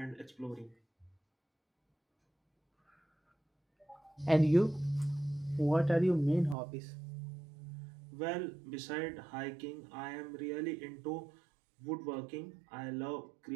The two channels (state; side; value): drops out; left; at 6.6 s